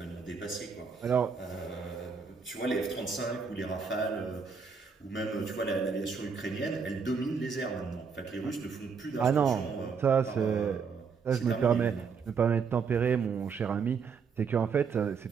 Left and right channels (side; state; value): left; quieter; 5.7 dB